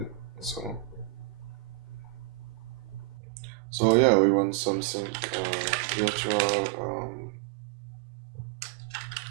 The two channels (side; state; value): left; drops out; at 3.1 s